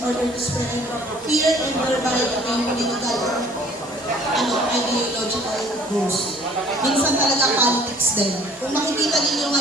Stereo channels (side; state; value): both; normal; correlation 0.54